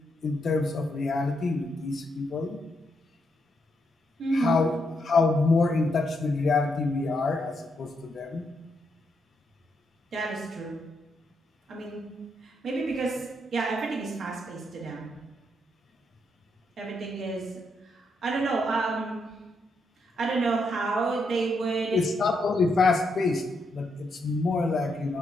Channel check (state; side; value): normal; both; correlation 0.79